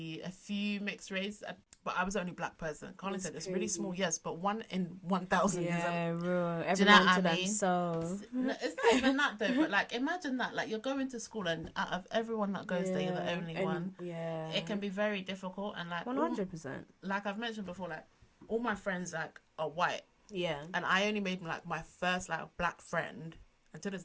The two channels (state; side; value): identical; both; correlation 1.00